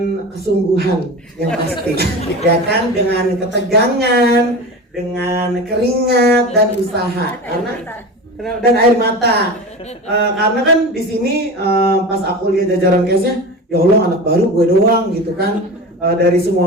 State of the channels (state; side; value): normal; both; correlation 0.30